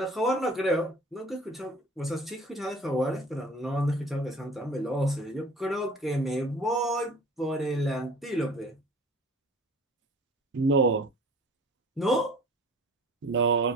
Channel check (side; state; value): both; normal; correlation 0.46